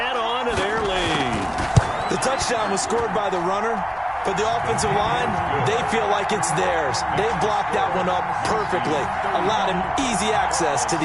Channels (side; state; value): both; identical; correlation 1.00